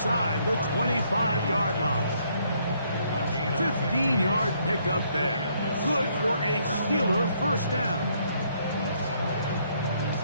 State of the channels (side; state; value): both; inverted; correlation -0.69